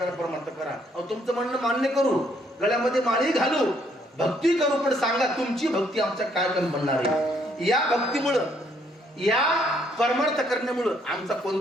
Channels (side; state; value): both; normal; correlation 0.69